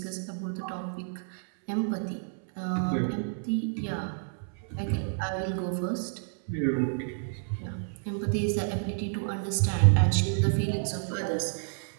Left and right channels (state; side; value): silent; left; 58 dB below the other